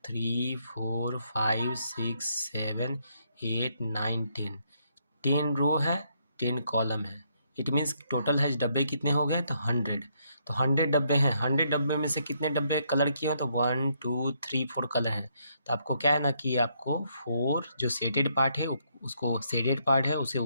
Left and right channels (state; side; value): inverted; both; correlation -0.73